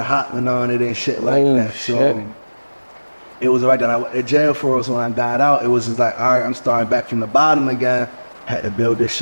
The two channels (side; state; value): both; inverted; correlation -1.00